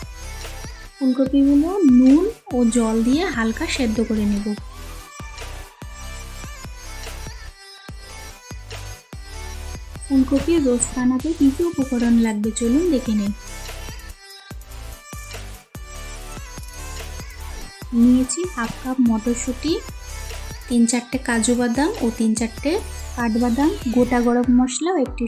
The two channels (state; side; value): identical; both; correlation 1.00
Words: ফুলকপিগুলো নুন ও জল দিয়ে হালকা সেদ্ধ করে নিব। ফুলকপির রোস্ট বানাতে কী কী উপকরণ লাগবে চলুন দেখে নেই। নিয়েছি হাফ কাপ মটরশুঁটি, 3-4টে কাজু বাদাম ও 3-4টে কাঠবাদাম, গোটা গরম মশলা ও একটি